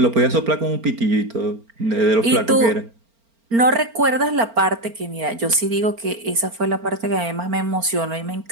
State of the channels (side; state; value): left; late; 4.4 ms